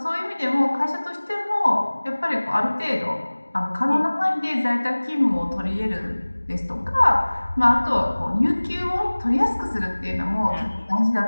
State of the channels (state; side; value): inverted; both; correlation -1.00